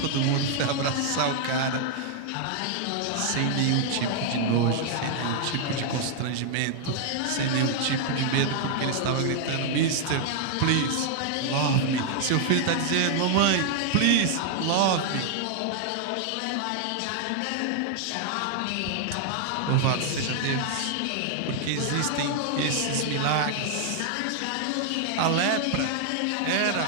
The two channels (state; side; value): different; both; correlation 0.00